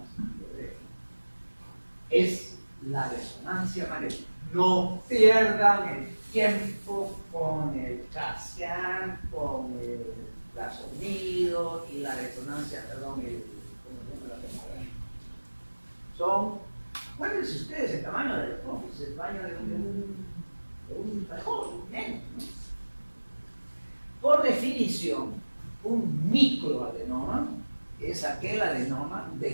de es la resonancia magnética. No pierdan el tiempo con el CAT-scan, con el ultrasonido y la resonancia, ¿cómo se llama la tomografía? Acuérdense ustedes el tamaño del office, el tamaño de un trabajo, menos, ¿no? Por definición, un microadenoma es aquel adenoma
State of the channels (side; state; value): both; inverted; correlation -1.00